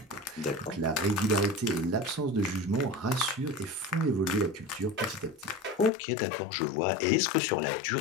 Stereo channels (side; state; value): right; drops out; at 5.9 s